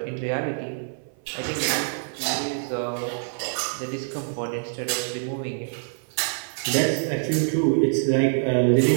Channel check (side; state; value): left; silent; 55 dB below the other